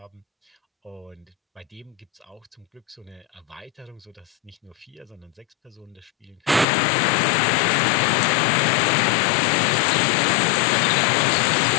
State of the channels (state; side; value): drops out; right; at 6.7 s